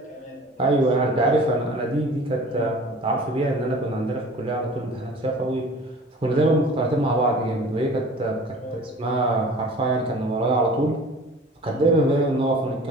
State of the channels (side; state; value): both; normal; correlation 0.44